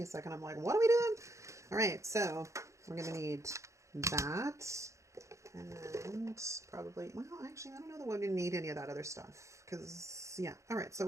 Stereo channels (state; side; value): late; left; 0.15 ms